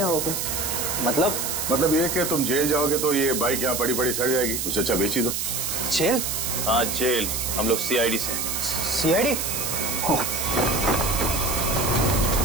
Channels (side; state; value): right; noise; hiss, 2 dB below the sound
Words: मतलब ये कि तुम जेल जाओगे तो ये बाइक यहाँ पड़ी पड़ी सड़ जाएगी, उससे अच्छा बेच ही दो। जेल? हाँ जेल। हम लोग सीआईडी से। सीआईडी?